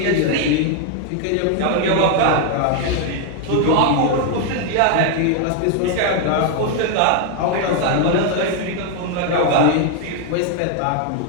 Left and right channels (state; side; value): different; both; correlation 0.01